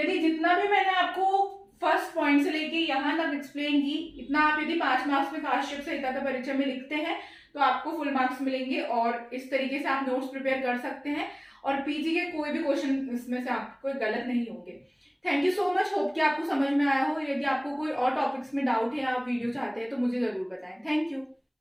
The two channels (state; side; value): identical; both; correlation 1.00